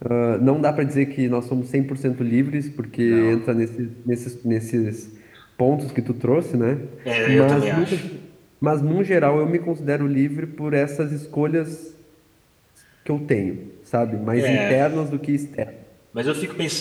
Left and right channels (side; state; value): both; identical; correlation 1.00